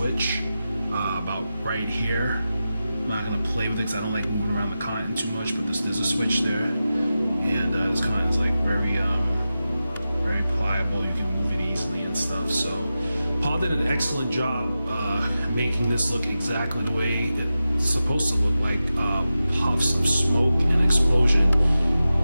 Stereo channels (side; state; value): both; inverted; correlation -0.93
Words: about right here. I'm not gonna play with it because I don't like moving around the cotton too much, but there's a switch there, and this cotton is like very pliable. You can move it easily and stuff. So Paul did an excellent job making this look exactly the way it's supposed to look, like puffs of smoke and explosion.